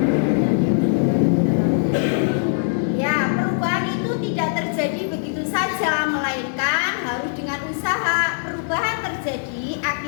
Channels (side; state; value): right; silent; digital silence